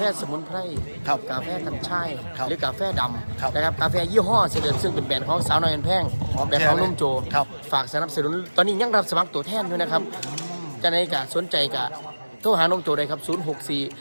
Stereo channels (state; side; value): inverted; both; correlation -1.00